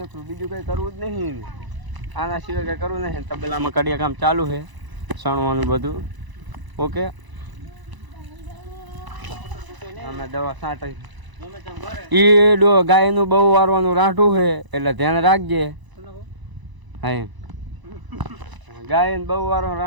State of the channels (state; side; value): late; left; 1.0 ms